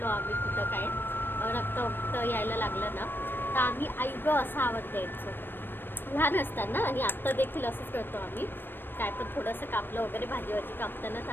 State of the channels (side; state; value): right; late; 0.096 ms